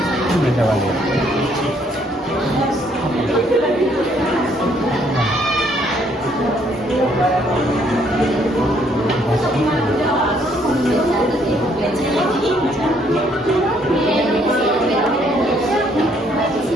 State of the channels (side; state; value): both; normal; correlation 0.67